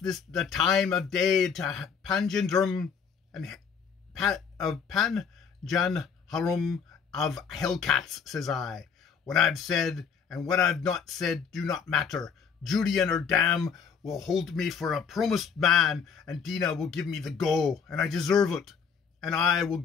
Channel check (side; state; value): right; quieter; 6.5 dB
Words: time of day to Panjandrum and of Panjanharum of Hellcats, says I. What I've said and what I've not said do not matter. Judy and her dam will hold me for a promised man, and Dina will give me the go, and I deserve it. And I will